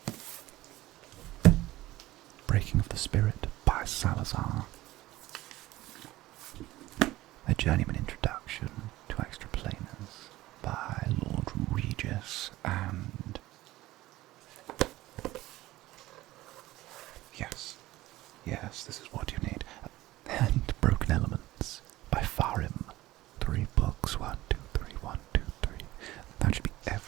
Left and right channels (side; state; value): left; quieter; 17.1 dB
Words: Breaking of the Spirit by Salazar, A Journeyman Introduction to Extraplaners by Lord Regis, and yes, this is what you need, and Broken Elements by Farim. 3 books, 1, 2, 3, 1, 2, 3. That should be